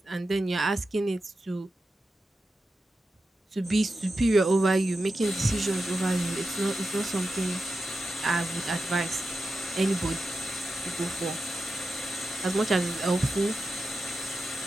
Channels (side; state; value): both; normal; correlation 0.91